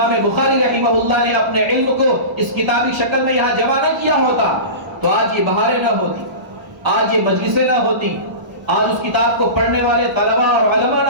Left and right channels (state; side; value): late; left; 1.0 ms